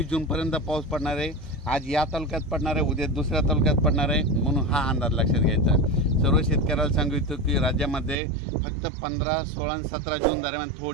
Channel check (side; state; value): left; drops out; at 8.2 s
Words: जूनपर्यंत पाऊस पडणार आहे। आज या तालुक्यात पडणार आहे, उद्या दुसऱ्या तालुक्यात पडणार आहे, म्हणून हा अंदाज लक्षात घ्यायचा। सर्व शेतकऱ्याला सांगू इच्छितो की राज्यामध्ये फक्त 15, 16 आणि 17 जून दरम्यान